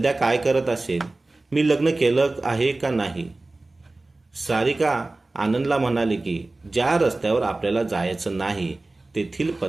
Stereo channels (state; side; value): quieter; left; 3.1 dB